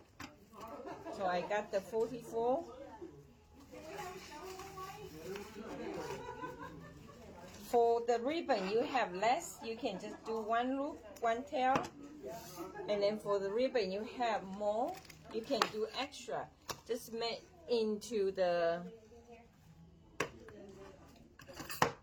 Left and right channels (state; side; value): identical; both; correlation 1.00